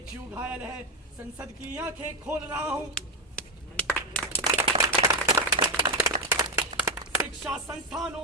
घायल है, संसद की आंखें खोल रहा हूँ। शिक्षा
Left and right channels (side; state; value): both; normal; correlation 0.10